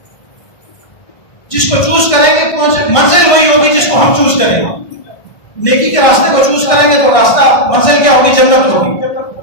جس کو چوز کریں گے منزل وہی ہوگی جس کو ہم چوز کریں گے۔ نیکی کے راستے کو چوز کریں گے تو راستہ منزل کیا ہوگی؟ جنت ہوگی۔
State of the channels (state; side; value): late; right; 1.5 ms